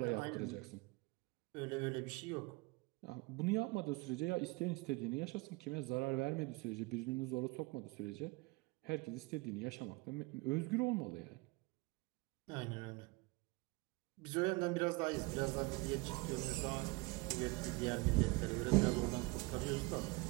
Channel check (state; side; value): quieter; left; 25.1 dB